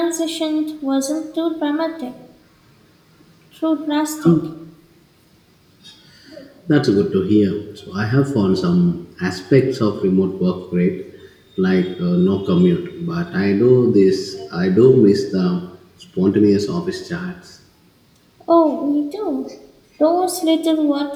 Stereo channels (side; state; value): both; identical; correlation 1.00